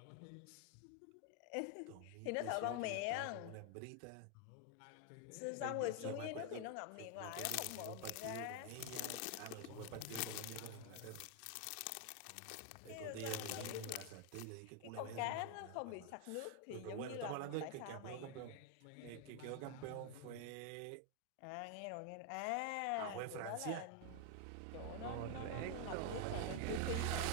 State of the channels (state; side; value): different; both; correlation 0.01